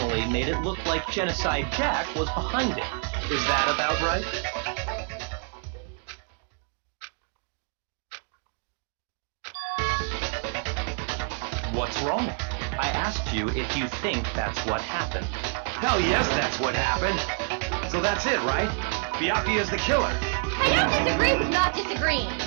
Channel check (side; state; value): left; quieter; 38.5 dB